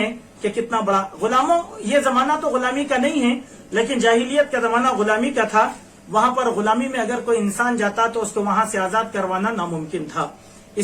कि कितना बड़ा गुलामों, ये जमाना तो गुलामी का नहीं है, लेकिन जाहिलियत का जमाना गुलामी का था। वहां पर गुलामी में अगर कोई इंसान जाता तो उसको वहां से आजाद करवाना नामुमकिन था।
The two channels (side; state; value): both; identical; correlation 1.00